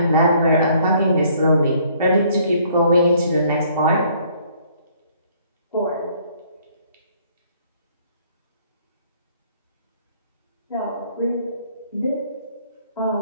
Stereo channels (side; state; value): both; inverted; correlation -0.62